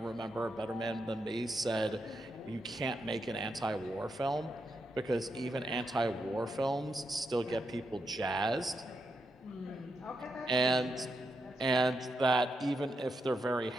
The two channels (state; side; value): normal; both; correlation 0.83